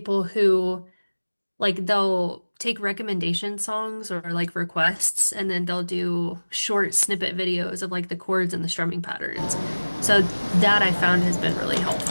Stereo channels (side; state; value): both; inverted; correlation -1.00